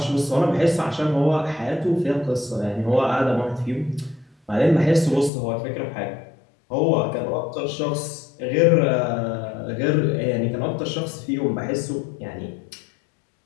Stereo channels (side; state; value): right; drops out; at 5.3 s